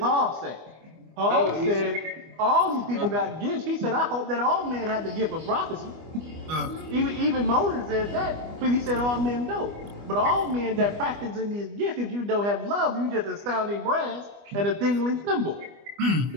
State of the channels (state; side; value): late; left; 25 ms